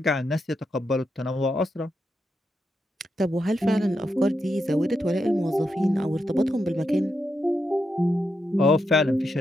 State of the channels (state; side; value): normal; both; correlation 0.84